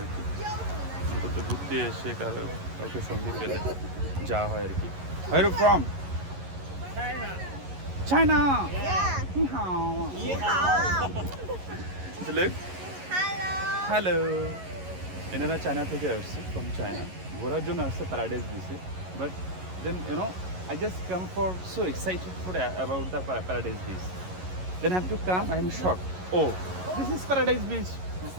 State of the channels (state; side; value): late; left; 11 ms